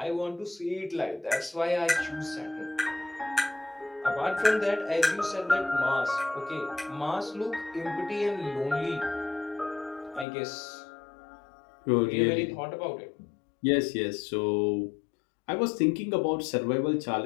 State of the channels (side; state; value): right; drops out; at 10.2 s